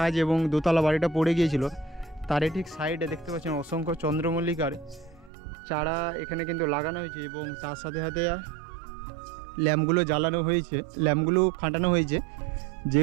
এবং দোতলা বাড়িটা পড়ে গিয়েছিল, তারই ঠিক সাইডে দেখতে পাচ্ছেন অসংখ্য চন্দ্রমল্লিকার চারা এখানে কিন্তু লাগানো হয়েছে এবং তার সাথে সাথে ল্যাম্পগুলো জ্বালানো হয়েছে, ল্যাম্পগুলো খাটানো হয়েছে,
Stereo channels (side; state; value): left; drops out; at 5.3 s